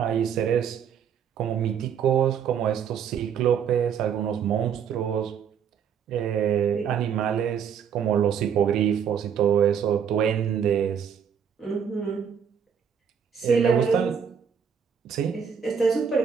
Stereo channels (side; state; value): left; quieter; 7.6 dB